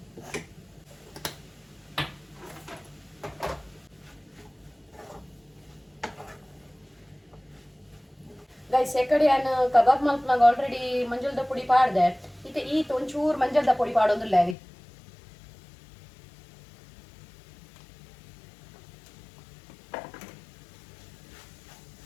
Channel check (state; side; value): drops out; right; at 14.6 s